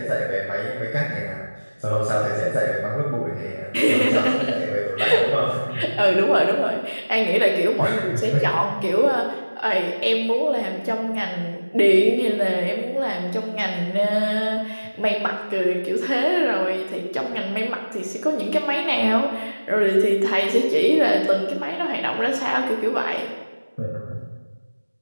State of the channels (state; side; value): inverted; both; correlation -1.00